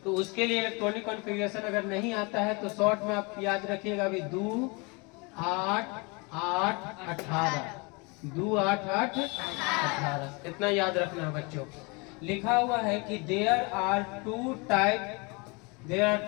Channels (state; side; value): quieter; right; 29.3 dB